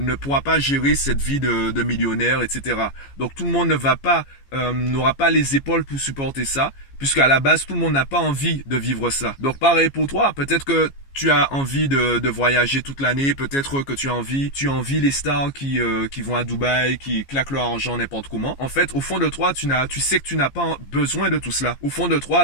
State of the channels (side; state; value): right; late; 15 ms